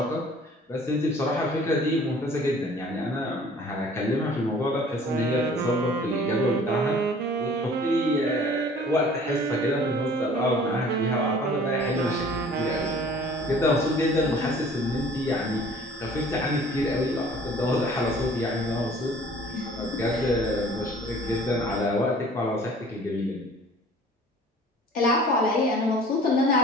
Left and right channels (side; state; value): both; normal; correlation 0.50